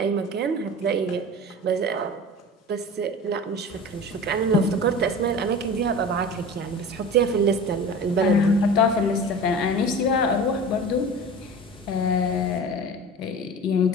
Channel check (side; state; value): both; normal; correlation 0.35